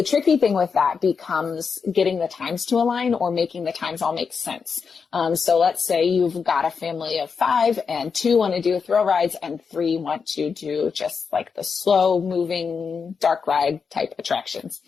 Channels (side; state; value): right; quieter; 5.7 dB